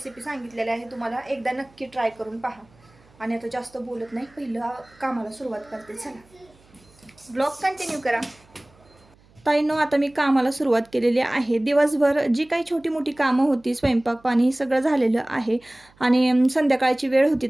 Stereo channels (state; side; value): noise; right; hum, 30 dB below the sound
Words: सांगितलेली आहे तुम्हाला, एकदा नक्की ट्राय करून पहा। आणि आता जास्त बोलत नाही, पहिलं कामाला सुरुवात करते। चला, ब्लॉग कंटिन्यू करा। ताईंनो, आता मी कामाला सुरुवात केलेली आहे। दिवसभर जी काही छोटी मोठी कामं होती, स्वयंपाक पाणी हे सगळं झालेलं आहे। आणि संध्याकाळची वेळ होती